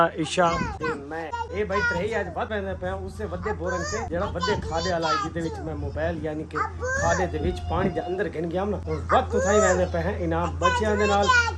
ईशा ते मैं ये भाई तरही आज बात कहंदे पे उससे वड्डे बोरंग से जेड़ा वड्डे खादे वाला जिदे विच मैं मोबाइल यानी कि खादे दे विच पानी दे अंदर गिन गया ना और वक्त उठाई वहदे पे हैं इनाम बच्चियां दे नाल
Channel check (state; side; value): identical; both; correlation 1.00